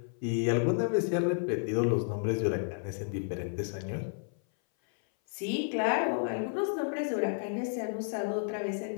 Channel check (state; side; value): silent; right; 57 dB below the other